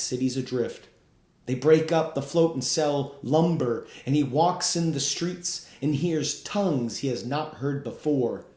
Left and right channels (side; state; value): both; identical; correlation 1.00